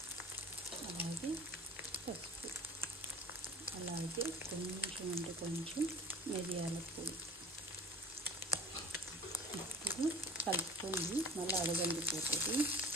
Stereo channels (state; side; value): normal; both; correlation 0.42